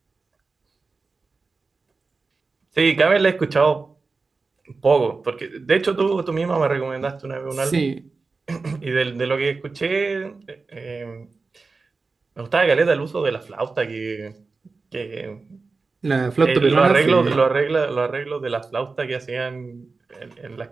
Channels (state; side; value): quieter; left; 4.1 dB